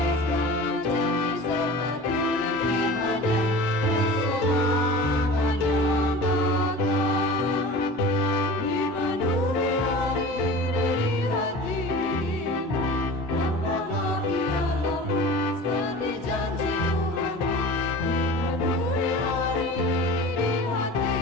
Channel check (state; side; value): normal; both; correlation 0.38